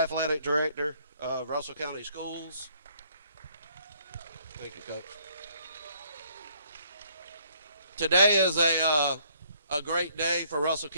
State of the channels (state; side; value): inverted; both; correlation -0.65